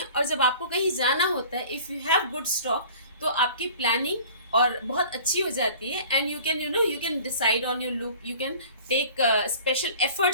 और जब आपको कहीं जाना होता है, if you have good stock, तो आपकी प्लानिंग और बहुत अच्छी हो जाती है and you can decide on your look, you can take special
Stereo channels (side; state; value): both; inverted; correlation -0.46